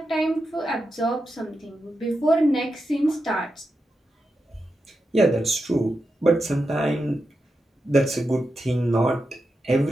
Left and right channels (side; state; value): both; normal; correlation 0.88